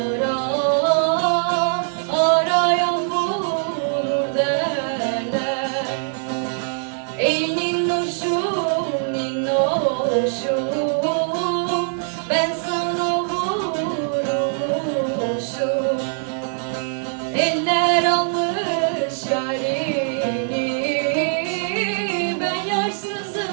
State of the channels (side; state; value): left; silent; 64 dB below the other